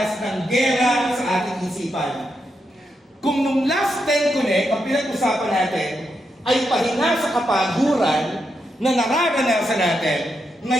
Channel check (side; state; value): both; normal; correlation 0.83